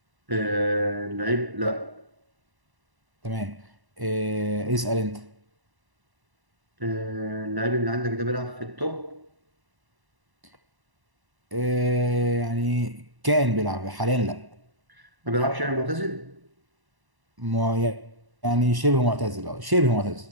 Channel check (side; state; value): left; late; 1.1 ms